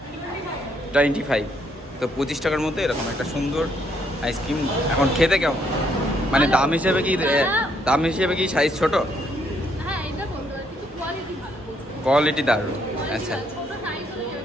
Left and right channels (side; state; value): both; normal; correlation 0.71